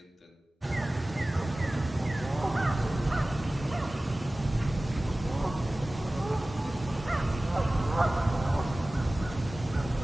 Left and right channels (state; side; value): normal; both; correlation 0.97